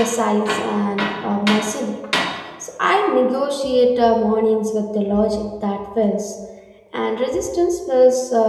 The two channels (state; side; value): identical; both; correlation 1.00